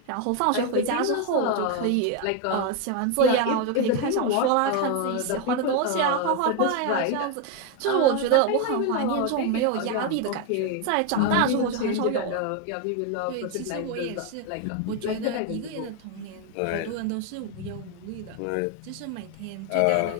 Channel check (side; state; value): both; different; correlation 0.02